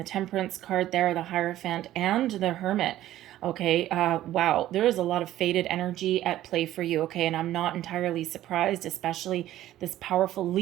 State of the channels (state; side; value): quieter; left; 13.8 dB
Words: Temperance card there, the Hierophant, and the Hermit. Okay, wow, there is a lot of faded energy at play for you, okay, and I'm not entirely surprised, especially this powerful